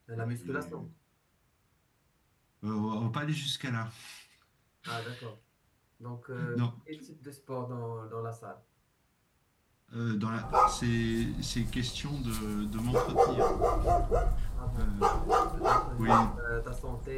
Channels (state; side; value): identical; both; correlation 1.00